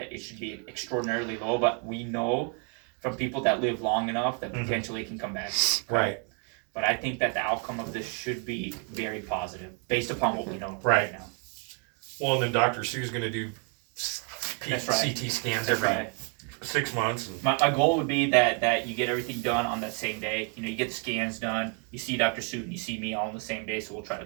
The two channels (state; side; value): quieter; left; 39.1 dB